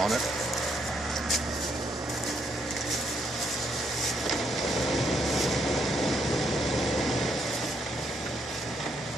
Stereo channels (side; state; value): both; normal; correlation 0.74